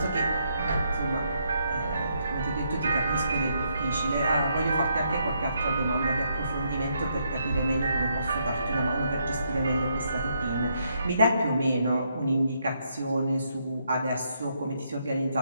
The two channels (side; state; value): both; inverted; correlation -0.76